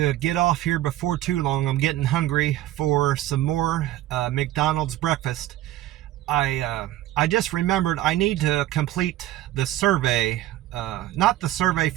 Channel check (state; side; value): quieter; left; 14.7 dB